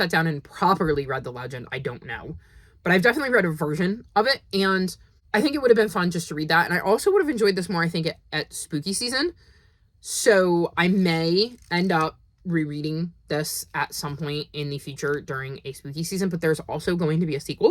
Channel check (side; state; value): both; identical; correlation 1.00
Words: down and properly read the legend, I don't know. But I've definitely read a version of it, and I think it would have been fun just to read that. And I also would have enjoyed this more, I think, at spooky season. So I may end up rereading this at some point in the future during a spooky season, but there's also going to be a